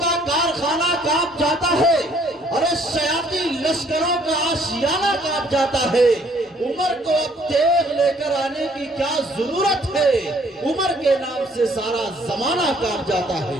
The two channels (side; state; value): both; normal; correlation 0.62